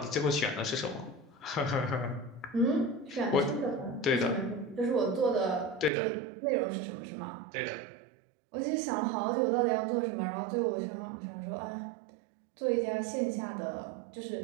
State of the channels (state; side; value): drops out; left; at 5.9 s